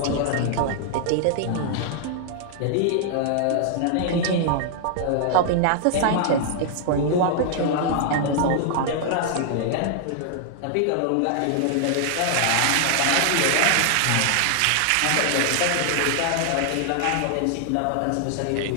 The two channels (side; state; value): both; different; correlation -0.01